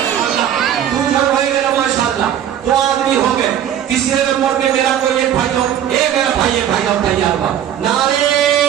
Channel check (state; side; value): quieter; left; 10.2 dB